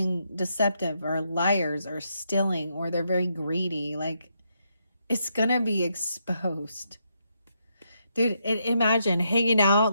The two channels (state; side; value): inverted; both; correlation -0.79